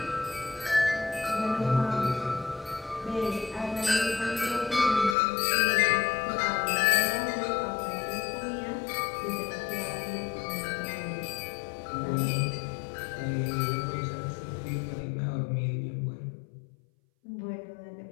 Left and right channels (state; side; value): drops out; right; at 5.2 s